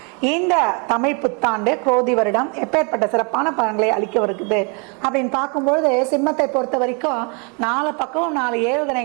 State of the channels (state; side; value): quieter; left; 34.6 dB